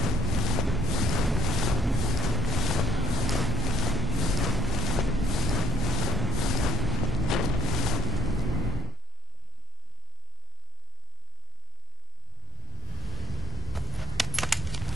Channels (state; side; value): normal; both; correlation 0.53